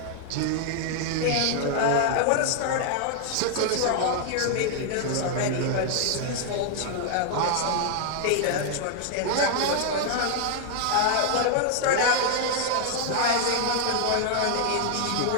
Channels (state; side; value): different; both; correlation 0.00